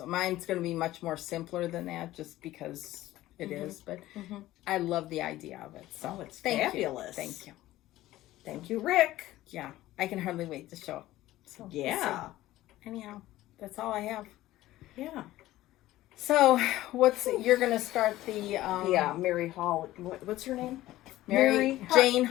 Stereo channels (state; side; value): quieter; right; 15.8 dB